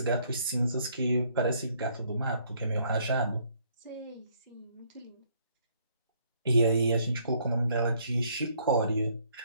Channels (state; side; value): inverted; both; correlation -0.66